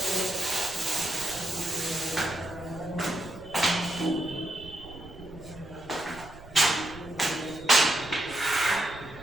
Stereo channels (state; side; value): noise; right; rumble, 18 dB below the sound